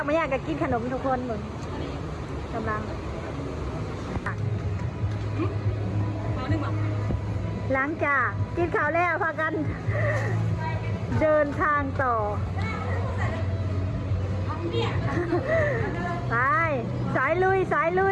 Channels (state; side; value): identical; both; correlation 1.00